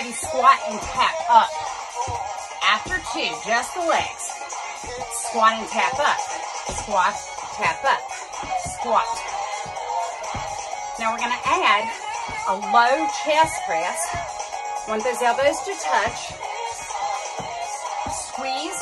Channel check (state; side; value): identical; both; correlation 1.00